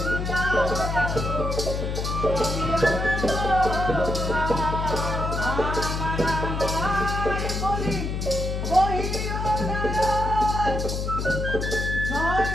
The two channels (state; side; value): noise; left; hum, 2 dB below the sound